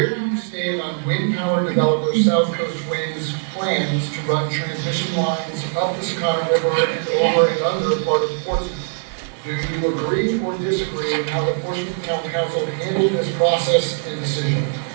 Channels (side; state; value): left; silent; 61 dB below the other